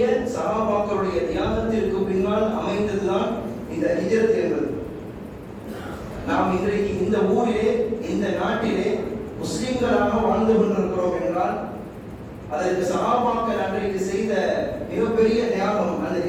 சஹாபாக்களுடைய தியாகத்திற்கு பின்னால் அமைந்ததுதான் இந்த ஹிஜ்ரத் என்பது. நாம் இன்றைக்கு இந்த ஊரிலே இந்த நாட்டிலே முஸ்லிம்களாக வாழ்ந்து கொண்டிருக்கிறோம் என்றால் அதற்கு சஹாபாக்கள் அன்றைக்கு செய்த மிகப்பெரிய தியாகம், அந்த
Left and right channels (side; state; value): both; identical; correlation 1.00